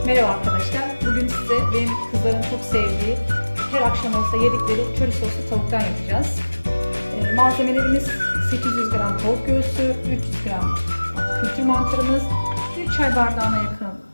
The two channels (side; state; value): both; inverted; correlation -1.00